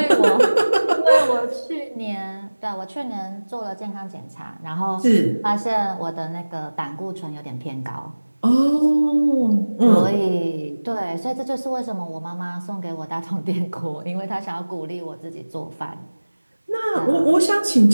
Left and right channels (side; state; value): both; inverted; correlation -1.00